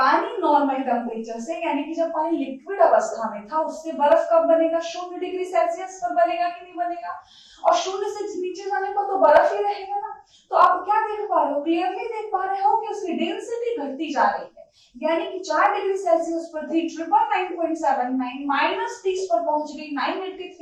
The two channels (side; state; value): both; identical; correlation 1.00